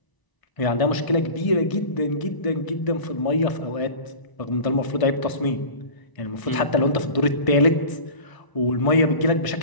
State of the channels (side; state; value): right; late; 1.0 ms